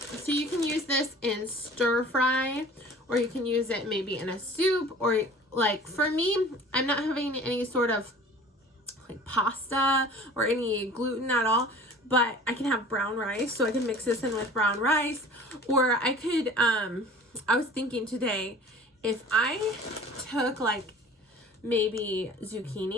you can use this in stir fry, or you can use it maybe in a soup, or like for me, I'm not having any sort of like pasta or any gluten at all, but I can have brown rice, so I can mix this in with brown rice. Or I could, I was thinking today, if I took like maybe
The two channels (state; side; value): normal; both; correlation 0.45